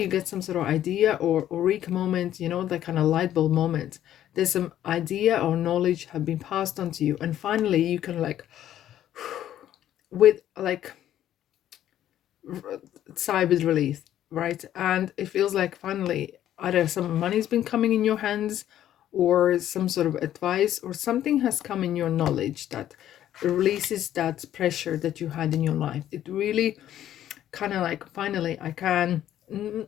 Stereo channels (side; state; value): right; quieter; 11.7 dB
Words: get some sort of idea or eureka moment, that kind of light bulb moment. There's some idea or knowledge have been passed on to you, and finally you can like with like sigh with relief, right? And it feels like finally either some money's been coming in your hands, or some sort of advice, or something has come in your knowledge that releases that pressure that you had in your life. It really kind of like, finally I can,